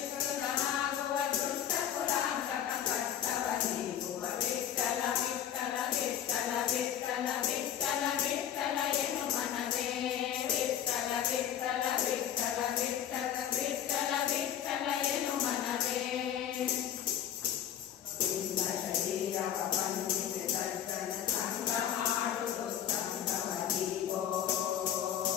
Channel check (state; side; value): quieter; right; 10.0 dB